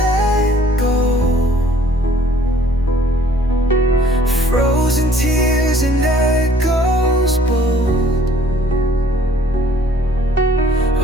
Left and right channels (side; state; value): both; normal; correlation 0.58